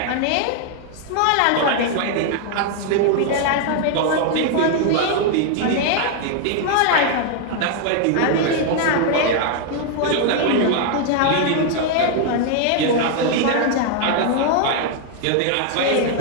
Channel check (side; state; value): both; different; correlation 0.00